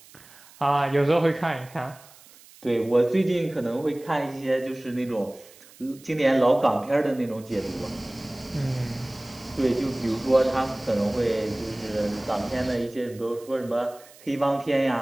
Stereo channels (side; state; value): right; noise; hiss, 23 dB below the sound